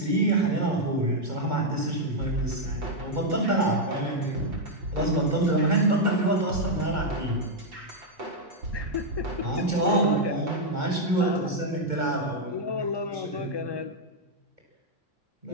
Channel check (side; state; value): left; late; 2.2 ms